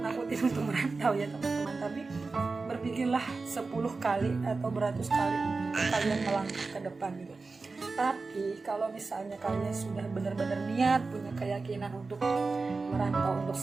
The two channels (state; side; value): quieter; left; 4.0 dB